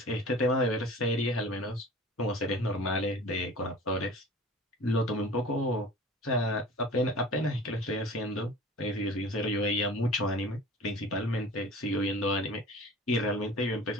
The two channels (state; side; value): normal; both; correlation 0.42